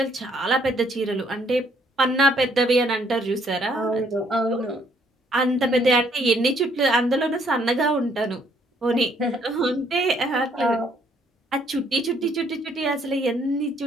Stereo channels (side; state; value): both; normal; correlation 0.67